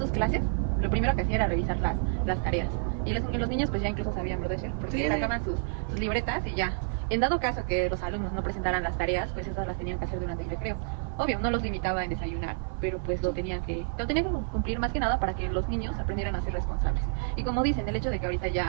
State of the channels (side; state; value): left; silent; 55 dB below the other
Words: clases, lo primero que hacía era revisar las tareas. Y los niños pues ya incluso sabían, ¿verdad, Cher? Porque Sí. sacaban sus libretas y ya. En dado caso que los alumnos no presentaran las tareas, pues esas las tenían que hacer durante el recreo. Obvio, no los limitaba en desayunar, pero pues lo tenían que cumplir más que nada para que los niños aprendieran a ser responsables. Y como dicen, el hecho de que ahorita